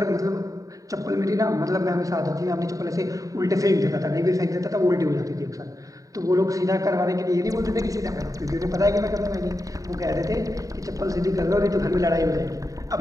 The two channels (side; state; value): left; late; 0.16 ms